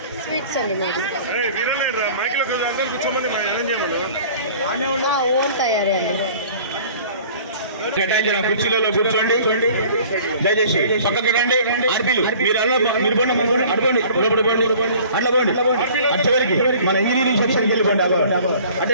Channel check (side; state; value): both; inverted; correlation -0.48